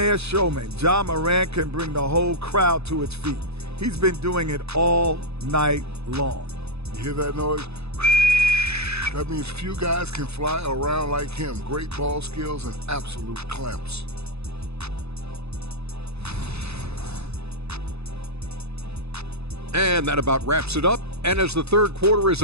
showmen, Ja Morant can bring the whole crowd to its feet. He's been doing it all night long. You hear that noise? That means few guys can fly around like him. Great ball skills and absolute clamps. And that about wraps it up. And as the third quarter is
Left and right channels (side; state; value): left; late; 0.79 ms